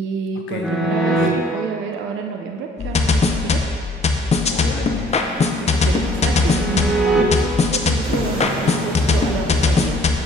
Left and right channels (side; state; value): both; normal; correlation 0.59